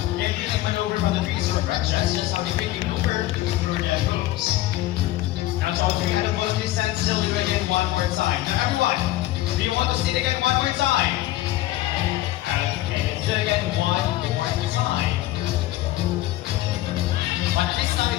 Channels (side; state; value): right; quieter; 15.8 dB